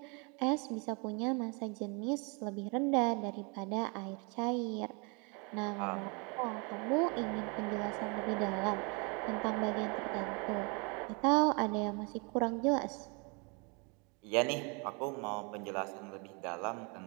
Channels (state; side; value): quieter; left; 32.3 dB